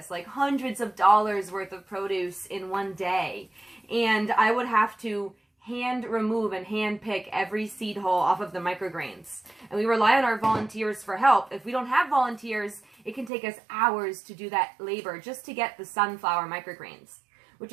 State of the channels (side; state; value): left; drops out; at 13.3 s